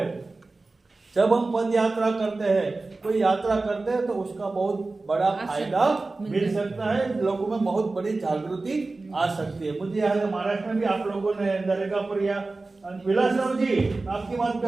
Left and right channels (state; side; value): quieter; left; 3.4 dB